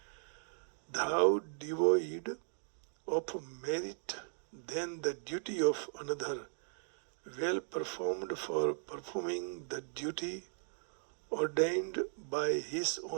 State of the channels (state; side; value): silent; left; digital silence